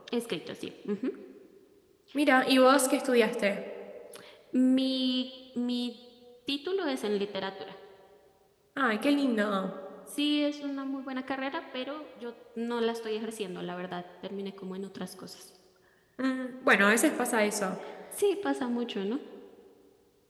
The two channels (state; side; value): identical; both; correlation 1.00